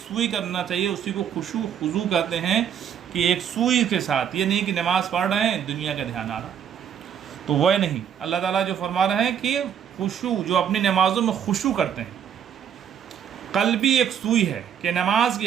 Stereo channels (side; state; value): left; quieter; 8.7 dB